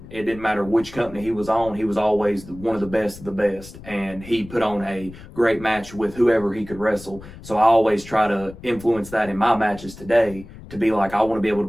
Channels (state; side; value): noise; left; rumble, 17 dB below the sound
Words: It didn't matter which company he was on, he was always one of the best, and he put on a great match with whoever he could wrestle. So I always try to influence that in my matches today, to be like, I want to be able